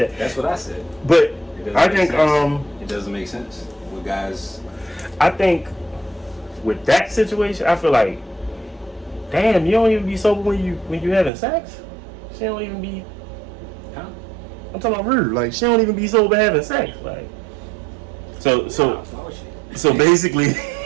That's what I said. But I think it doesn't make sense with guys. I think with that situation, I feel like, damn, you don't even be sober when you having sex. She don't even be. Huh? I'm talking about rude. Like she don't even be sober having sex. Like so basically,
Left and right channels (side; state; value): left; drops out; at 11.3 s